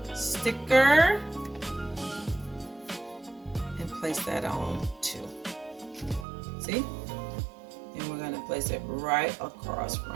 sticker and place that on too. See? And we're gonna place it right across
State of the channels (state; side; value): drops out; left; at 6.2 s